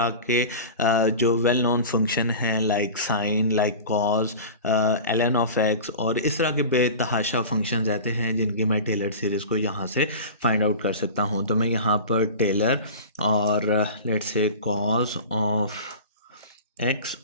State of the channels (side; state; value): both; inverted; correlation -0.34